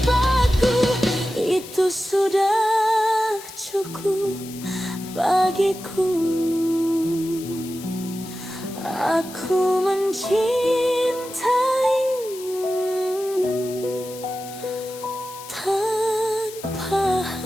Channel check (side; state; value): left; noise; hiss, 15 dB below the sound